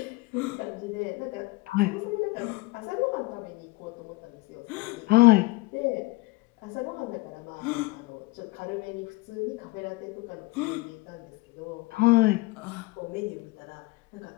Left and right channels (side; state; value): right; quieter; 21.9 dB